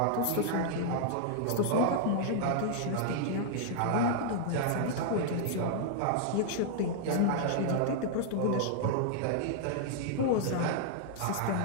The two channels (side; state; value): both; different; correlation -0.01